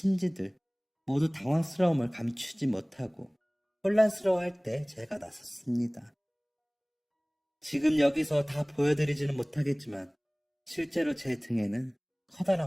모두 당황스러움을 감추지 못하고 혼란스러워할 때 제가 나섰습니다. 지금 여기서 다 보여드리지는 못하겠지만 실제로 제 등에는 커다란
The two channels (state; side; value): identical; both; correlation 1.00